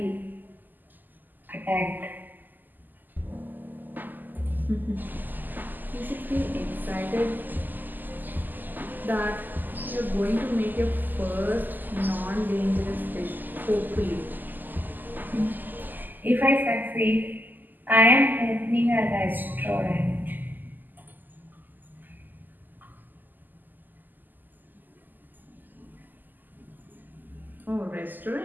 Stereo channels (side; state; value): left; late; 0.087 ms